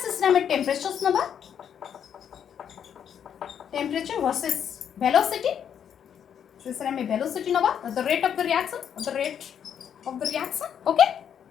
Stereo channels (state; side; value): quieter; right; 8.5 dB